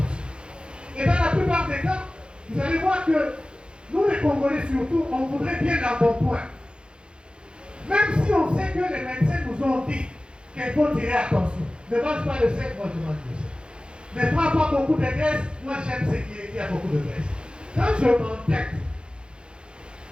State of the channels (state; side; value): late; left; 0.053 ms